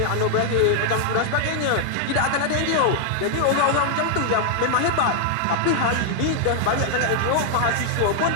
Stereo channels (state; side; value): different; both; correlation -0.01